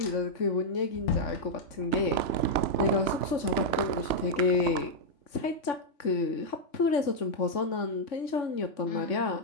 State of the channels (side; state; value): right; late; 3.6 ms